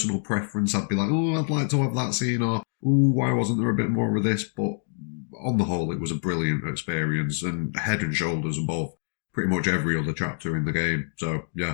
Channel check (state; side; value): silent; right; digital silence